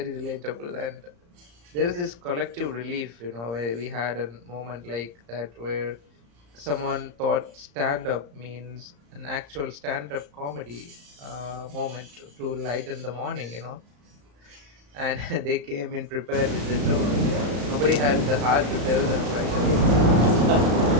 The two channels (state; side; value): late; left; 34 ms